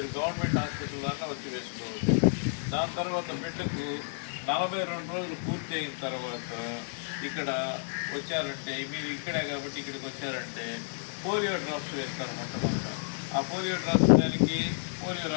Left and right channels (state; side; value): silent; right; digital silence